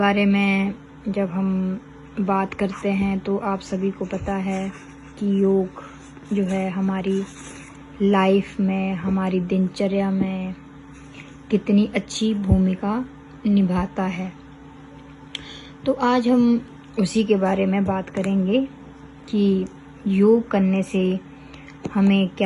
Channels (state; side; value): identical; both; correlation 1.00